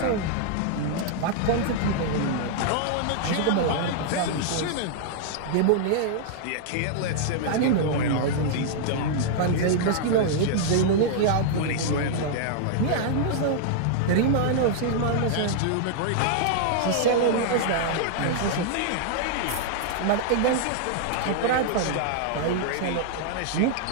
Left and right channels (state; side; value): different; both; correlation -0.01